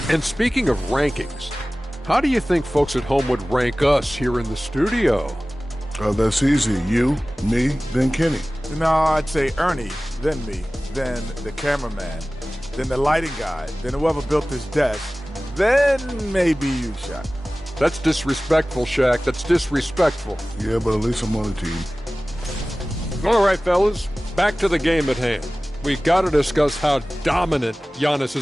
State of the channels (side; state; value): both; normal; correlation 0.97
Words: And speaking of rankings, how do you think folks at home would rank us here in the studio? That's easy. You, me, then Kenny. No, I'd say Ernie, then me, then the cameraman, then the lighting guy, then whoever built this desk, then maybe you, Shaq. That's disrespectful, Shaq. That's disrespectful. Yeah, but at least I'm on the team. All right, fellas, back to the game at hand. We've got to discuss how dominant Giannis